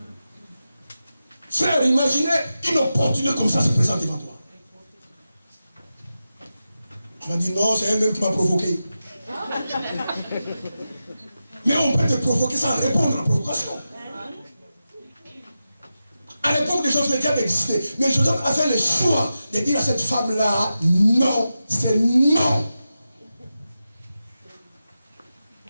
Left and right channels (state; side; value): inverted; both; correlation -0.91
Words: Frère, imaginez une opportunité comme ça se présente devant toi. On m'a dit non, c'est elle-même qui m'a provoqué. Mais on peut te provoquer sans répondre à la provocation. À l'époque de Joseph, le diable existait. Mais Joseph a fait le choix de dire à cette femme-là, non, c'est non.